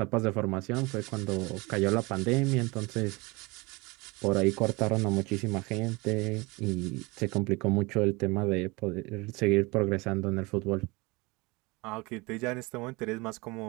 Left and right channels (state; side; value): quieter; left; 25.1 dB